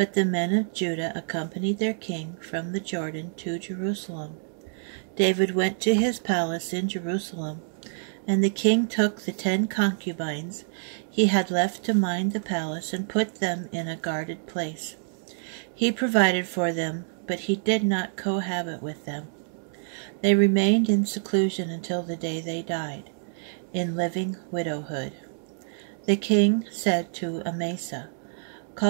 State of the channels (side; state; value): left; silent; digital silence